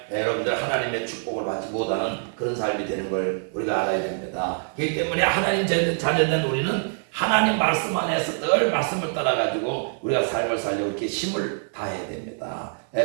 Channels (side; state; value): left; silent; 57 dB below the other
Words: 여러분들 하나님의 축복을 받지 못하는 그런 삶이 되는 걸 우리가 알아야 됩니다. 그렇기 때문에 하나님 자녀된 우리는 하나님 말씀 안에서 늘 말씀을 따라가지고 우리가 삶을 살려고 이렇게 힘을 다해야 됩니다.